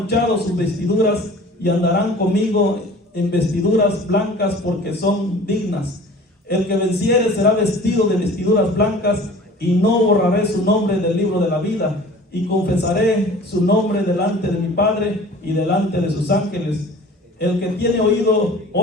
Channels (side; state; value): both; normal; correlation 0.45